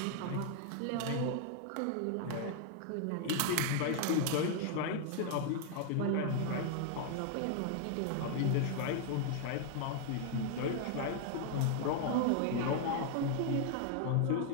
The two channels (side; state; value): both; different; correlation 0.00